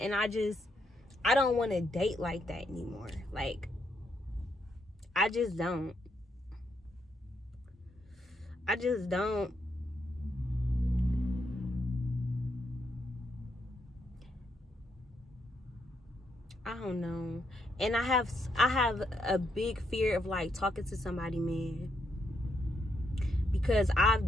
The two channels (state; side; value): normal; both; correlation 0.78